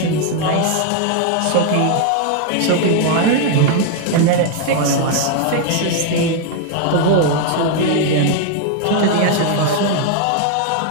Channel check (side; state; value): both; different; correlation 0.00